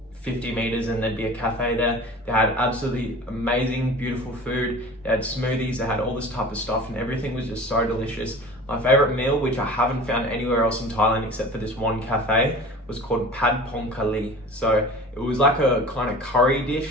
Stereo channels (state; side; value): normal; both; correlation 0.40